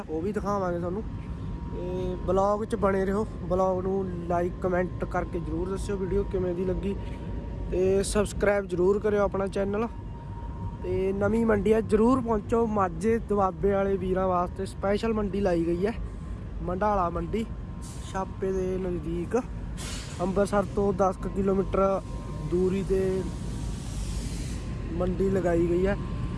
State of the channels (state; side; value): identical; both; correlation 1.00